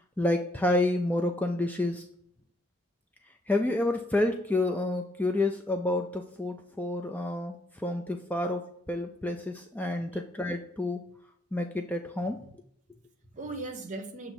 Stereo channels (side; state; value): both; normal; correlation 0.72